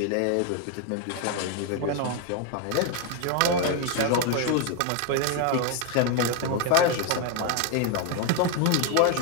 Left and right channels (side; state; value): both; different; correlation 0.01